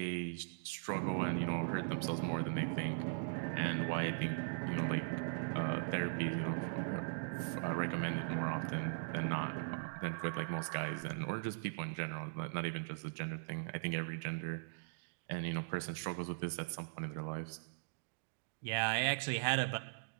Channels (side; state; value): left; silent; digital silence